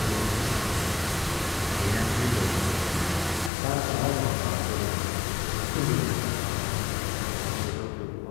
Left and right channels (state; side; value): drops out; right; at 3.5 s